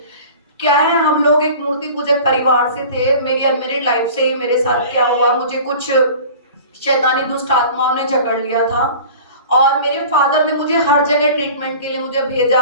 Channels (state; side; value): inverted; both; correlation -0.41